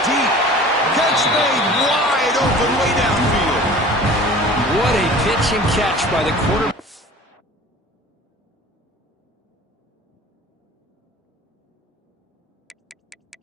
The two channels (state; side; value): normal; both; correlation 0.43